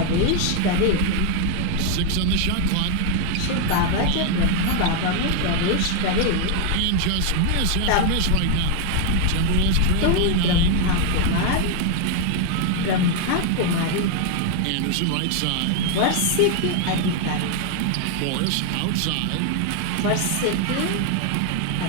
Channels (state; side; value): different; both; correlation 0.01